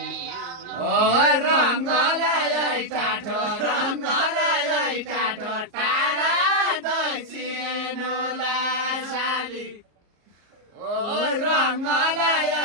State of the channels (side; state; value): left; late; 34 ms